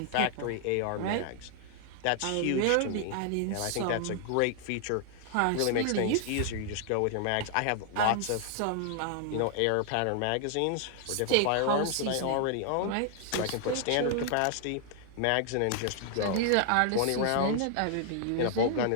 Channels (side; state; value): both; different; correlation 0.00